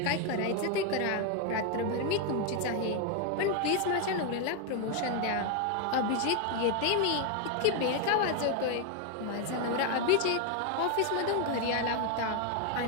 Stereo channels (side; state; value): both; different; correlation 0.01